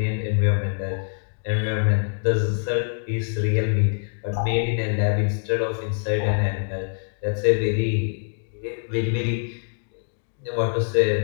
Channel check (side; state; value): right; silent; digital silence